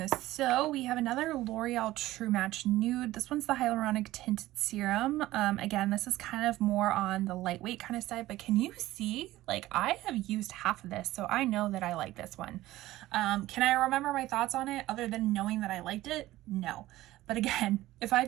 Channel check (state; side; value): quieter; left; 16.3 dB